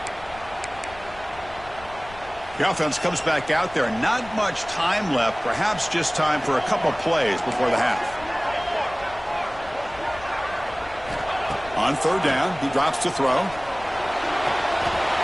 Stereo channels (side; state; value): left; noise; rumble, 19 dB below the sound